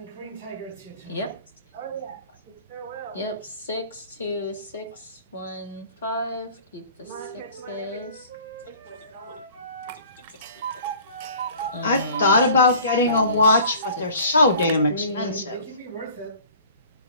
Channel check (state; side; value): inverted; both; correlation -0.48